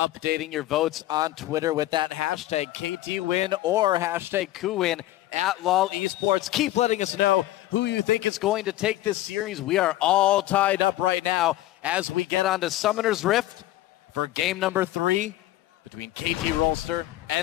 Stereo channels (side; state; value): right; quieter; 15.3 dB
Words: your votes on Twitter with that hashtag KTWin or hashtag KOOWin at LOL Esports. Keep letting us know who you think is going to take this series. We are all tied up right now as we get on to Summoner's Rift for game number 3 between KT Rolster